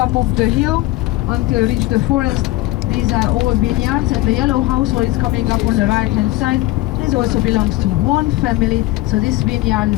of the hill, until reach the forest. These are all vineyards, and the yellow house, what is coming up on the right hand side, this also belongs to one family. So this vineyard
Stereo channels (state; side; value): quieter; right; 18.3 dB